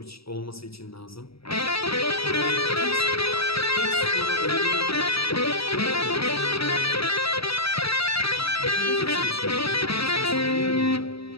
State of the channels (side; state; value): right; late; 0.76 ms